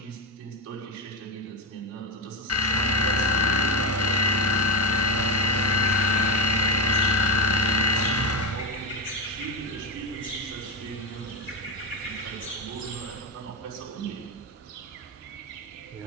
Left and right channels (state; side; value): normal; both; correlation 0.15